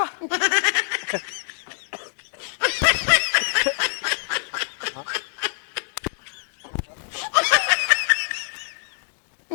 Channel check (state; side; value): silent; right; digital silence